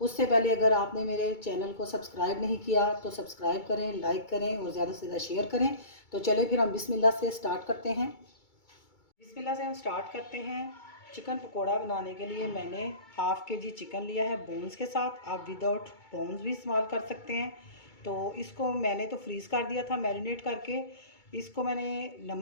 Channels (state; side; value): late; right; 2.3 ms